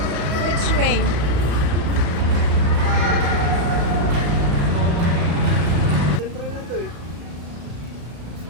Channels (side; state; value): left; late; 34 ms